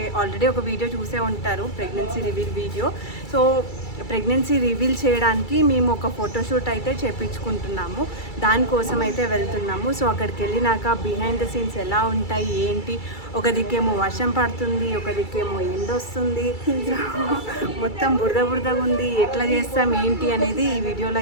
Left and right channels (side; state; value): right; late; 2.3 ms